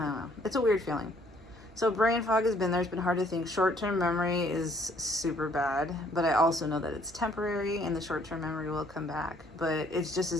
don't know. It's a weird feeling. So brain fog has been there. It's been hard to think. Short-term memory is super bad, but I also know that it's temporary and the short-term memory will come back. But it's just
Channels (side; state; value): both; normal; correlation 0.63